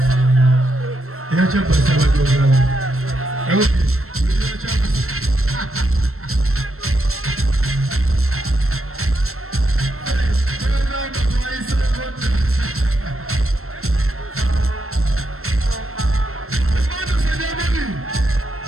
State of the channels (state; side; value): late; left; 0.62 ms